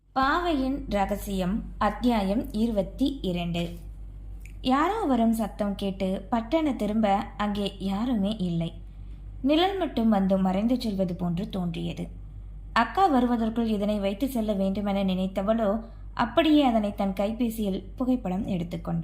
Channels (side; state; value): both; identical; correlation 1.00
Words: பாவையின் ரகசியம் அத்தியாயம் 22. யாரோ வரும் சத்தம் கேட்டு பட்டண திரும்ப அங்கே யாருமே இல்லை. நிழல் மட்டும் வந்து மறைந்து செல்வது போன்று தோன்றியது. அக்கா வருவதற்குள் இதனை வைத்து செல்ல வேண்டுமென நினைத்தவளோ அப்படியே அதனை தன் கைபேசியில் புகைப்படம்